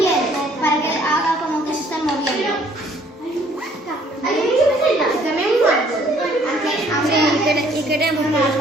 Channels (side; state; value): both; normal; correlation 0.61